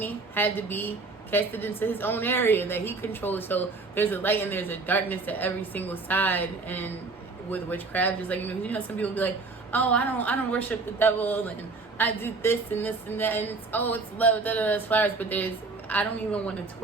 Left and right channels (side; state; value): left; quieter; 3.9 dB